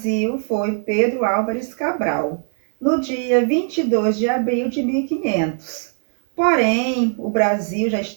foi Pedro Álvares Cabral, no dia 22 de abril de 1500. Porém, o Brasil já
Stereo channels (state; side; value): silent; left; 57 dB below the other